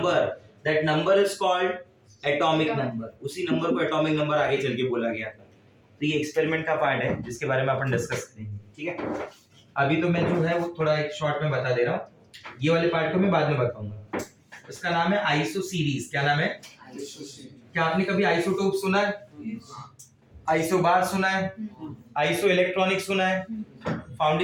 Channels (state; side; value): identical; both; correlation 1.00